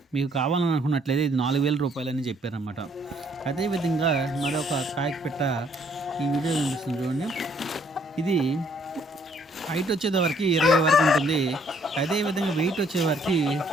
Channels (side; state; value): both; normal; correlation 0.65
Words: మీకు కావాలనుకున్నట్లయితే ఇది 4000 రూపాయలని చెప్పారన్నమాట. అదేవిధంగా మరొక కాకి పెట్ట ఈ వీడియో కనిపిస్తుంది చూడండి. ఇది హైట్ వచ్చేవారికి 20 వరకు ఉంటుంది. అదేవిధంగా వెయిట్ వచ్చేవారికి